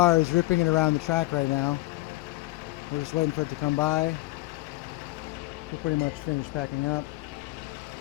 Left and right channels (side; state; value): right; quieter; 19.3 dB